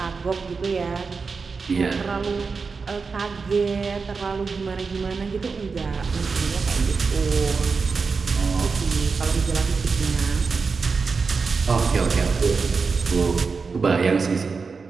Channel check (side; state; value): left; quieter; 4.8 dB